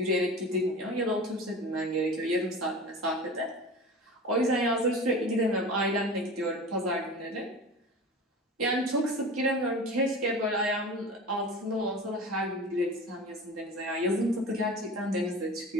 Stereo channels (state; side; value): normal; both; correlation 0.34